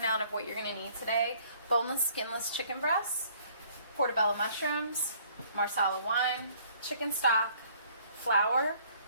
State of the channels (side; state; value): both; inverted; correlation -0.60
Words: of what you're going to need today: boneless, skinless chicken breasts, portobello mushrooms, marsala wine, chicken stock, flour,